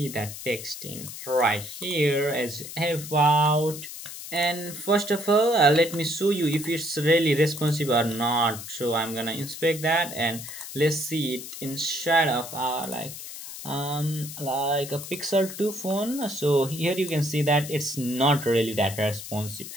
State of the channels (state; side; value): noise; left; hiss, 11 dB below the sound